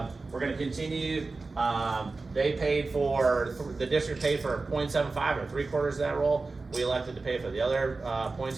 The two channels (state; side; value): quieter; left; 3.7 dB